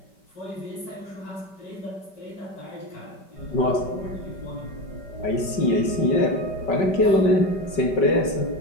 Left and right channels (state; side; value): late; right; 5.3 ms